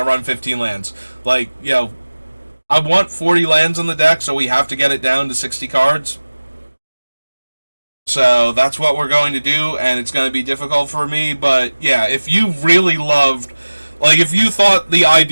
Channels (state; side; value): inverted; both; correlation -1.00